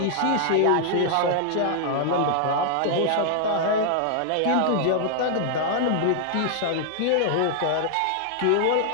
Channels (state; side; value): different; both; correlation -0.01